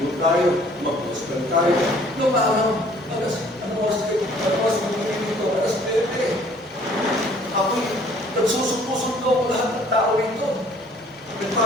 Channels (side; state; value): both; normal; correlation 0.57